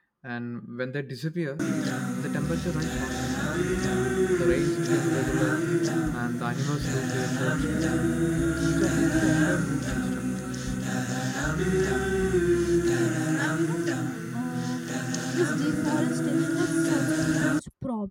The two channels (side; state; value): both; identical; correlation 1.00